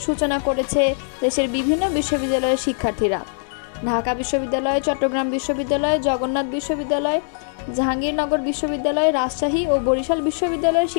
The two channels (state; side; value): silent; right; 62 dB below the other